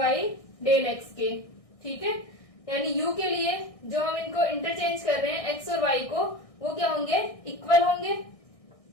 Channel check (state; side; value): late; right; 1.6 ms